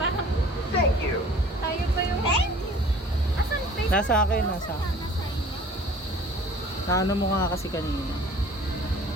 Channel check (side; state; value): both; normal; correlation 0.48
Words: Thank you. tayo pa yung... Thank you! Asan face mask? Nasa akin, nasa. Nasa inyo. Naano mo nga kasi kanina.